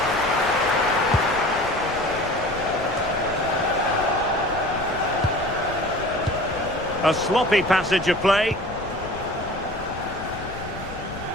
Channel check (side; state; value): left; noise; rumble, 13 dB below the sound